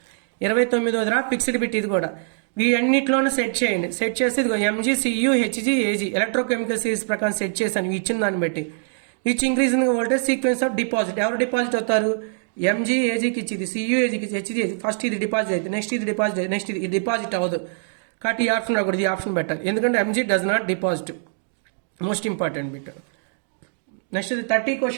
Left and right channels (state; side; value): silent; left; digital silence